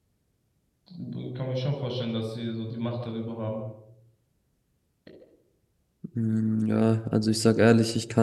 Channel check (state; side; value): identical; both; correlation 1.00